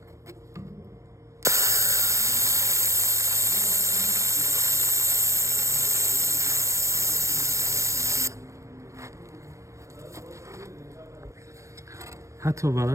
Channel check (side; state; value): left; late; 0.15 ms